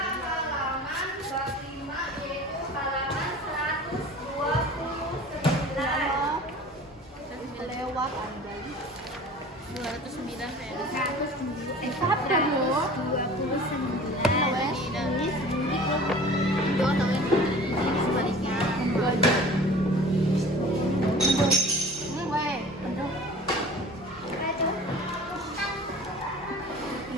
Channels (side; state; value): both; normal; correlation 0.42